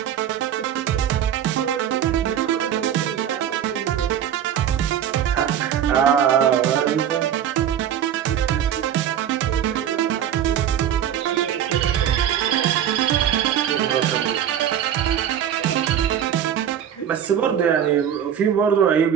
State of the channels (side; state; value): left; quieter; 9.7 dB